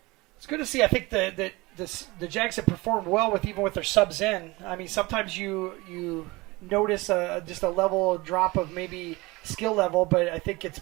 It's good to see. I think the Jags have performed well even with their subs in. I mean, sometimes you notice just a level drop of maybe skill level, but I think it's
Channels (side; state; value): left; quieter; 22.7 dB